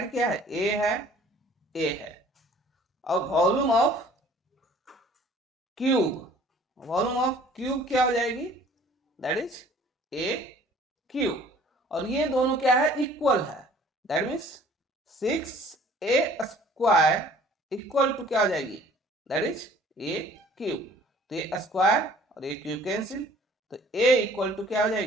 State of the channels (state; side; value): normal; both; correlation 0.53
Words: क्या है ए है, और वॉल्यूम ऑफ क्यूब क्या हो जाएगी, दैट इज ए क्यूब, और ये दोनों क्या है इक्वल है, that means 6a square equal to क्या हो जाएगी, दैट इज ए क्यूब। तो ये स्क्वायर और ये क्यूब कैंसिल, तो a इक्वल टू क्या हो